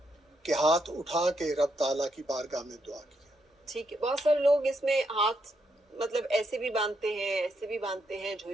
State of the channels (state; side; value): normal; both; correlation 0.79